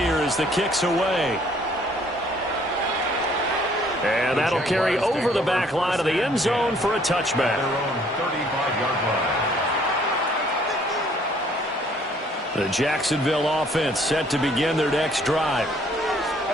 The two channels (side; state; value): both; normal; correlation 0.61